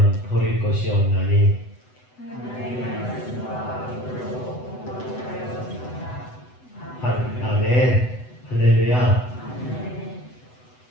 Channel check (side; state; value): right; late; 8.0 ms